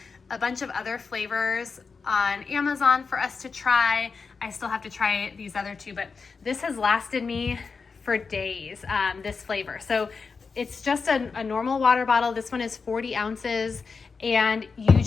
a bunch of other flavors on Amazon for us to try. I still have to try these other two, but this has lasted me for days, this flavor. So it's just a normal water bottle. This one is 40 ounces, and you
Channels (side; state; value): right; quieter; 5.0 dB